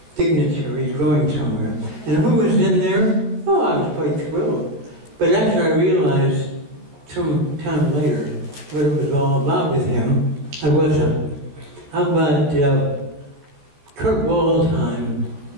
dignitaries going somewhere. And who was in there? Oh, I was quite thrilled. But after I realized some time later what it was all about with him, I wasn't. How about Kurt Waldheim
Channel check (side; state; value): left; late; 14 ms